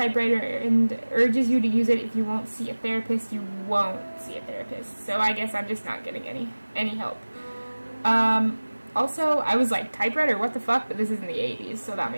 and urges you to use it. If you won't see a therapist, you won't see a therapist. So I guess I'm just not getting any help. Also, I was like, typewriter, what the fuck? But this is in the 80s, so that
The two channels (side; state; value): both; inverted; correlation -1.00